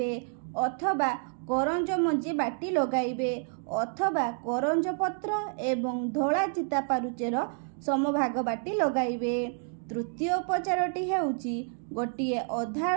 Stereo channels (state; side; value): silent; left; 58 dB below the other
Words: अथवा करंज मंजी बाटी लगाइबे अथवा करंज पत्र एवं धोला चिता पारुचेर समभाग बाटी लगाइबे। तृतीय उपचारटी हेउची गोटिए